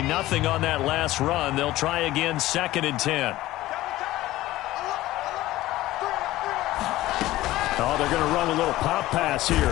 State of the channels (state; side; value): quieter; right; 16.5 dB